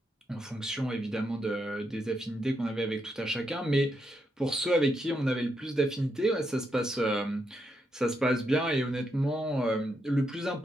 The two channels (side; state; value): both; normal; correlation 0.81